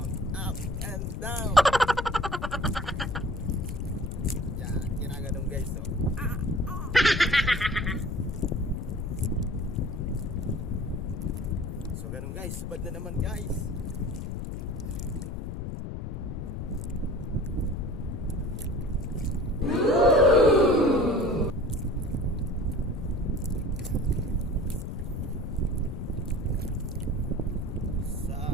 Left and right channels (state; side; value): noise; left; rumble, 5 dB below the sound